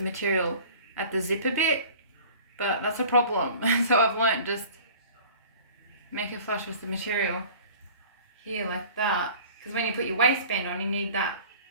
material at the zipper bit, but that's a problem. So I've learned just make it flush with the material here like that. Because when you put your waistband on, you need that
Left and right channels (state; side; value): inverted; both; correlation -0.45